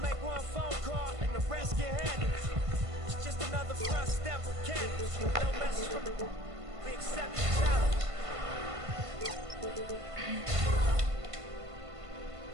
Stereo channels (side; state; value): left; late; 1.5 ms